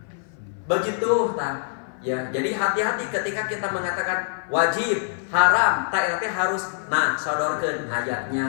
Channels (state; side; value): silent; right; 58 dB below the other